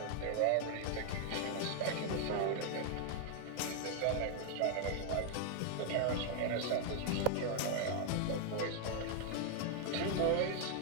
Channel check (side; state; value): both; different; correlation 0.00